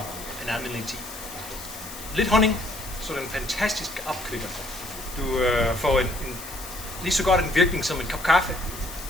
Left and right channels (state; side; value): noise; left; hiss, 12 dB below the sound